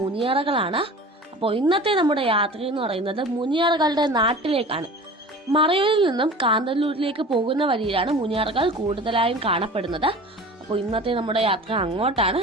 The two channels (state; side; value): normal; both; correlation 0.39